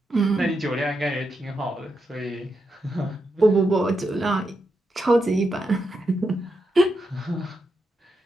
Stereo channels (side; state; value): both; normal; correlation 0.84